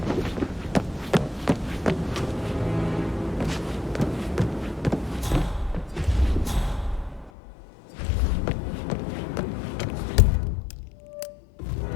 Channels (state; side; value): drops out; right; at 7.3 s